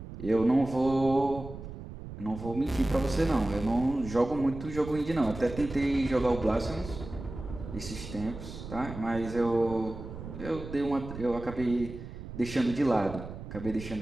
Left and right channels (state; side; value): noise; right; rumble, 11 dB below the sound